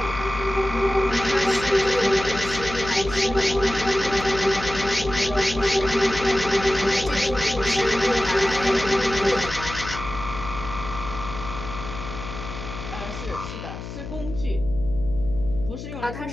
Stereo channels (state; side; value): noise; left; hum, 9 dB below the sound